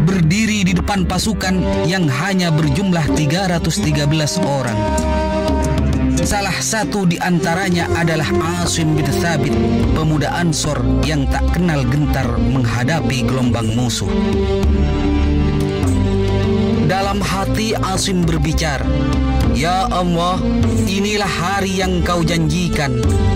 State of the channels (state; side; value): identical; both; correlation 1.00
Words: berdiri di depan pasukan yang hanya berjumlah 313 orang. Salah satu di antaranya adalah Asim bin Thabit, pemuda Ansor yang tak kenal gentar menghadapi gelombang musuh. Dalam hati Asim berbicara, "Ya Allah, inilah hari yang kau janjikan.